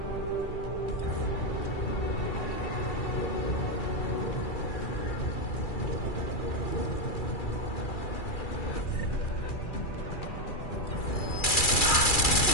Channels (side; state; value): right; late; 2.3 ms